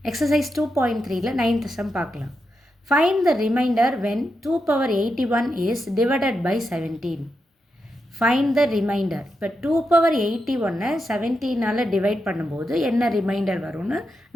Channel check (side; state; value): both; normal; correlation 0.86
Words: exercise 2.3ல 9th sum பார்க்கலாம். Find the remainder when 2 power 81 is divided by 17. Find the remainder. இப்போ 2 power 81 17ஆல் divide பண்ணும்போது என்ன reminder வரும்னு